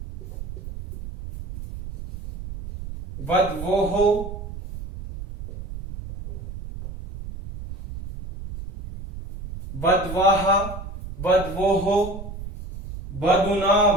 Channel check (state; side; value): noise; right; rumble, 11 dB below the sound